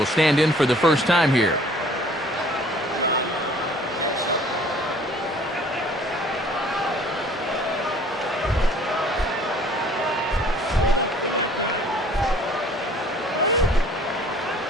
stand in for the first time here.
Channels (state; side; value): normal; both; correlation 0.54